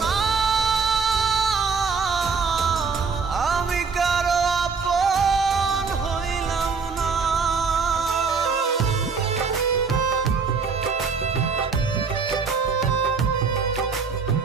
আমি কারো আপন হইলাম না।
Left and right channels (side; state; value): left; quieter; 5.2 dB